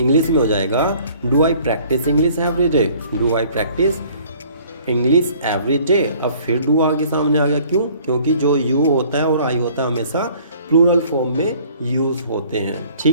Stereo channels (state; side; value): inverted; both; correlation -0.55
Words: में हो जाएगा do I practice English every day. Do I practice English every day. अब फिर डू आगे सामने आ गया, क्यों, क्योंकि जो यू होता है और आई होता है हमेशा प्लूरल फॉर्म में यूज़ होते हैं।